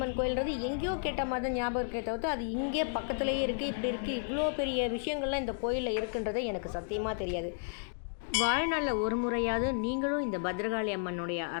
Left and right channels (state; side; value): silent; right; digital silence